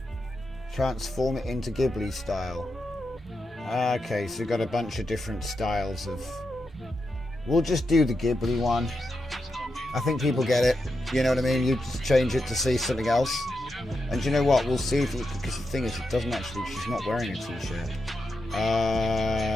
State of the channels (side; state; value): both; normal; correlation 0.87